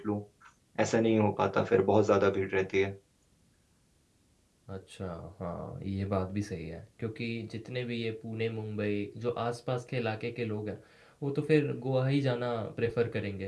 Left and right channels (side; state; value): both; identical; correlation 1.00